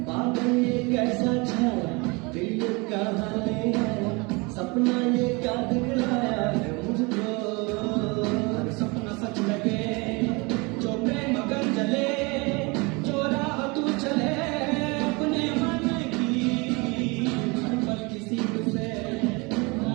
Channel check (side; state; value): left; quieter; 27.5 dB